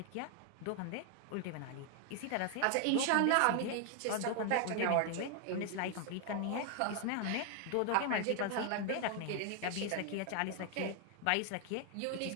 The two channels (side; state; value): both; different; correlation 0.00